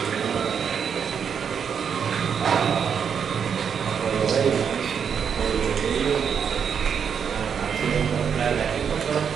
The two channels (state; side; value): quieter; left; 7.2 dB